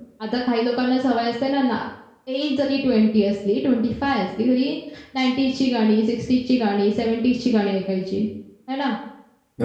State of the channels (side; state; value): both; identical; correlation 1.00